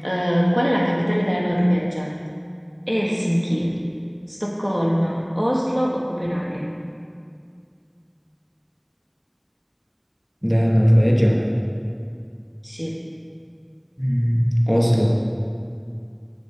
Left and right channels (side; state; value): both; identical; correlation 1.00